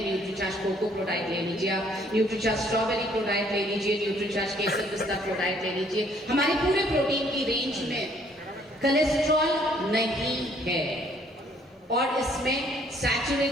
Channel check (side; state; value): both; normal; correlation 0.63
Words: न्यूट्रीचार्ज कोको प्रोडाइट ले लीजिए आप, न्यूट्रीचार्ज स्ट्रॉबेरी प्रोडाइट ले लीजिए, न्यूट्रीचार्ज केसर पिस्ता प्रोडाइट ले लीजिए, हमारे पूरे प्रोटीन की रेंज में कोलेस्ट्रॉल नहीं है और इसमें